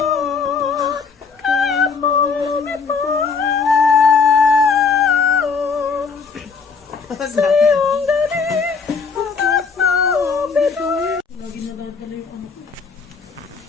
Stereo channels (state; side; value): quieter; right; 5.2 dB